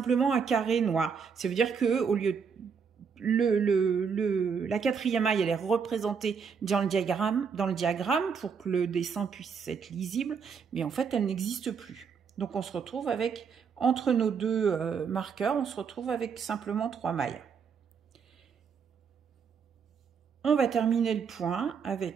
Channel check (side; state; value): left; quieter; 6.2 dB